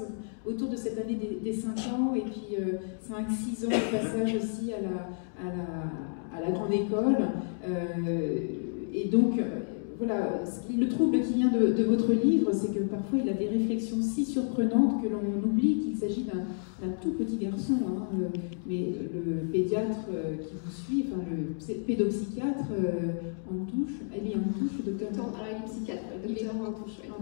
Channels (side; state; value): right; silent; digital silence